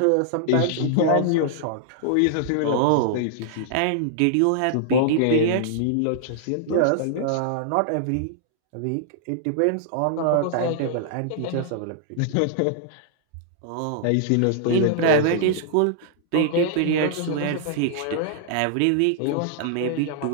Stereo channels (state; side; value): different; both; correlation -0.01